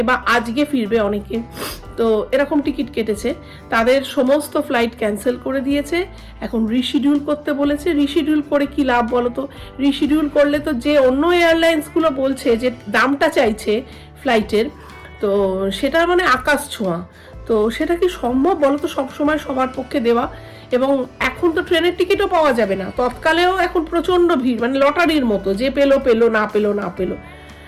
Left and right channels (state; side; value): identical; both; correlation 1.00